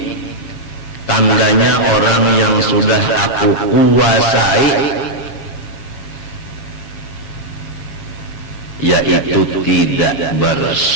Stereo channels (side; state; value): right; late; 7.1 ms